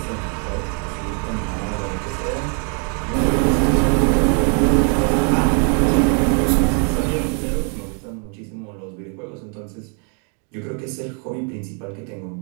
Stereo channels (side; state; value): left; quieter; 39.6 dB